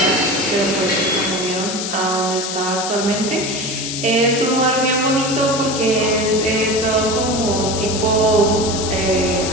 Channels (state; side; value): noise; left; hiss, 5 dB below the sound